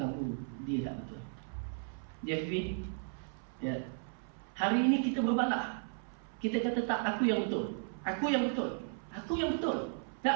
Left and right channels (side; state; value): left; silent; 54 dB below the other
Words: dia tak betul. Dia fikir, ya. Hari ini kita berbalah, kita kata tak, aku yang betul, aku yang betul, aku yang betul.